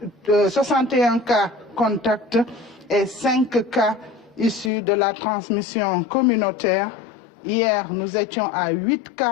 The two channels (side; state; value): right; drops out; at 4.7 s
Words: 61 cas contacts et 5 cas issus de la transmission communautaire. Hier, nous étions à 8